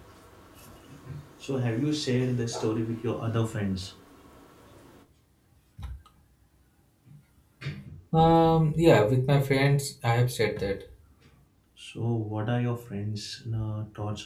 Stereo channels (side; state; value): both; identical; correlation 1.00